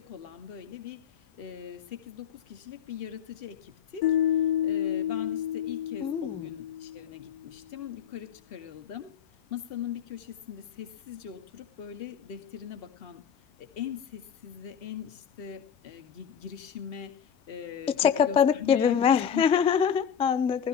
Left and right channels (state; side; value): quieter; right; 8.0 dB